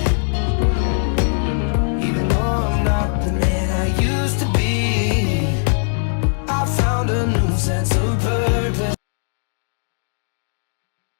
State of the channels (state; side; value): silent; right; digital silence